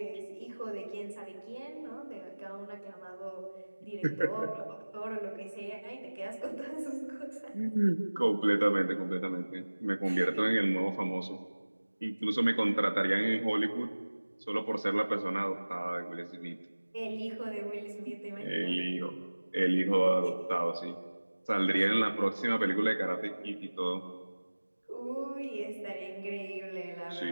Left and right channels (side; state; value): both; inverted; correlation -1.00